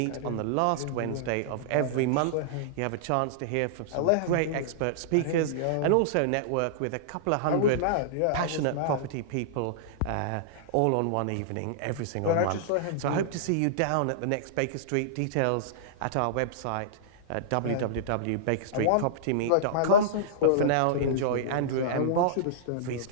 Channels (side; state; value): both; different; correlation -0.02